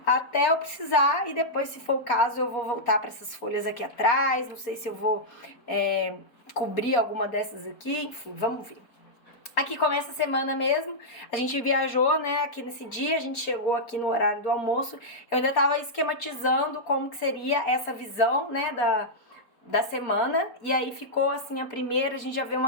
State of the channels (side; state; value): right; late; 4.2 ms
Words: até eu precisar, e depois, se for o caso, eu vou voltar para essas folhas aqui atrás. Não sei se eu vou cobrir alguma dessas aqui, enfim, vamos ver. Aqui começa a semana mesmo, a gente viajou, né, aqui nesse dia, a gente chegou aqui no horário do almoço, eu ainda tava esquematizando como que seria essa visão, né, da semana, e aí ficou assim a primeira, a gente já vê